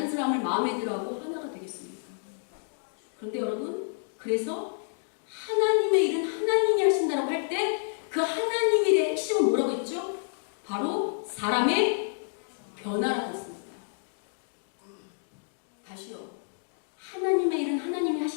사람을 마음에 들어하고 하나가 되겠습니까? 그런데 여러분, 그래서 하나님의 일은 하나님이 하신다고 할 때 그 하나님의 일의 핵심은 뭐라고 했죠? 바로 사람의 변화라고 했습니다. 다시요. 하나님의 일은 하나님이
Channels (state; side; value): silent; right; digital silence